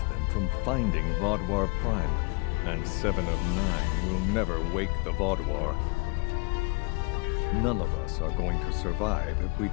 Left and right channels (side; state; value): right; quieter; 29.6 dB